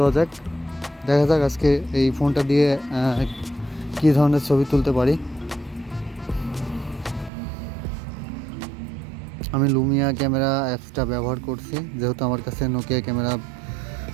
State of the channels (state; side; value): drops out; left; at 7.3 s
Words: যাক। দেখা যাক আজকে এই ফোনটা দিয়ে কী ধরনের ছবি তুলতে পারি। আমি লুমিয়া ক্যামেরা অ্যাপসটা ব্যবহার করছি, যেহেতু আমার কাছে নোকিয়া ক্যামেরা